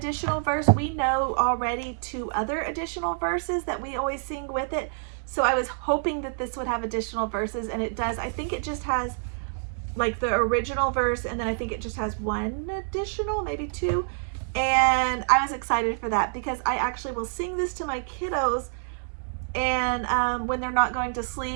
verse. We know already 2 other additional verses that we always sing with it. So I was hoping that this would have additional verses, and it does. I think it just has like the original verse, and then I think it just has 1 additional, maybe 2. And I was excited for that because I actually will sing this to my kiddos, and when they're not going to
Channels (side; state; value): left; silent; digital silence